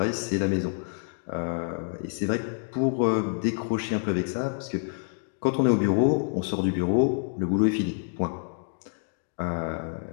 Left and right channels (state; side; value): silent; right; digital silence